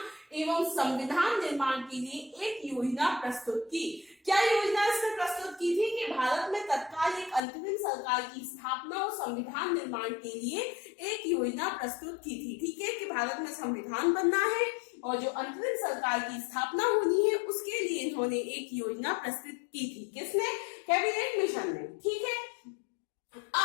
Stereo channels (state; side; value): drops out; right; at 7.4 s